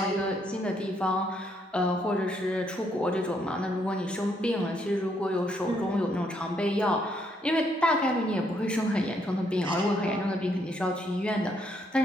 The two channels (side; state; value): both; normal; correlation 0.73